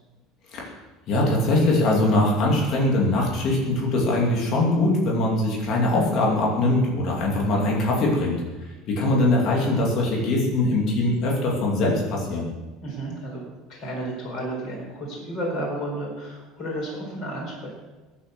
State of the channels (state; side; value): normal; both; correlation 0.34